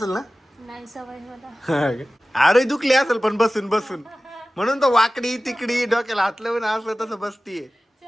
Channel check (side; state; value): both; normal; correlation 0.97